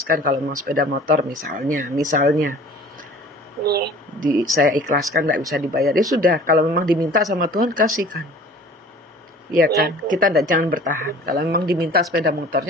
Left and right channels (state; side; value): normal; both; correlation 0.46